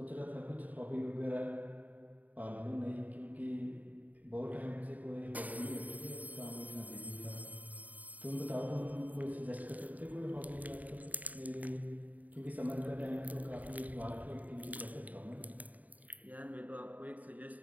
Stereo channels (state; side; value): late; left; 0.075 ms